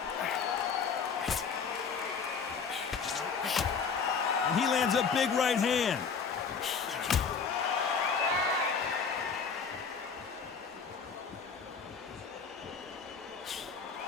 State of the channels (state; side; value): quieter; right; 5.8 dB